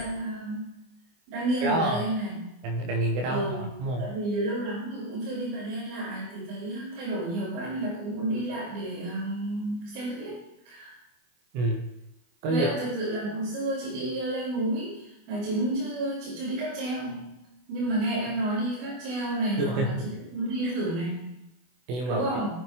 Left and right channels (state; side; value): late; left; 24 ms